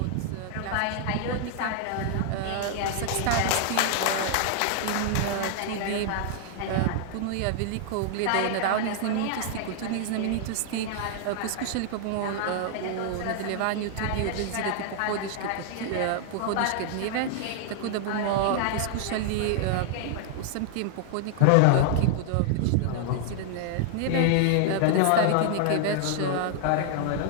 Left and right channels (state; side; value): different; both; correlation 0.00